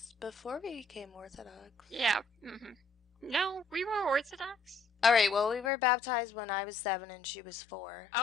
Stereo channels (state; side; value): drops out; right; at 5.7 s